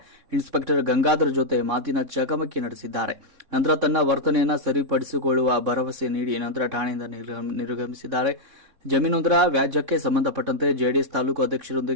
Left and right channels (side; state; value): left; late; 3.6 ms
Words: ಇನ್ಸ್ಪೆಕ್ಟರ್ ಗಂಗಾಧರ್ ಜೊತೆ ಮಾತಿನ ಚಕಮಕಿ ನಡೆಸಿದ್ದಾರೆ. ನಂತರ ತನ್ನ ವರ್ತನೆಯನ್ನು ಸರಿಪಡಿಸಿಕೊಳ್ಳುವ ಭರವಸೆ ನೀಡಿ ನಂತರ ಠಾಣೆಯಿಂದ ನಿರ್ಗಮಿಸಿದ್ದಾರೆ. ಜಮೀನೊಂದರ ವ್ಯಾಜ್ಯಕ್ಕೆ ಸಂಬಂಧಪಟ್ಟಂತೆ ಜೆಡಿಎಸ್ ತಾಲೂಕು